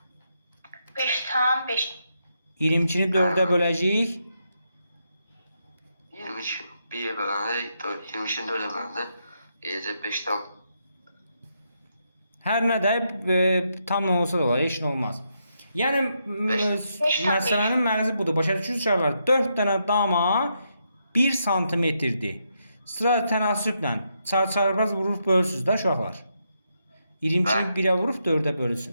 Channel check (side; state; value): both; inverted; correlation -0.81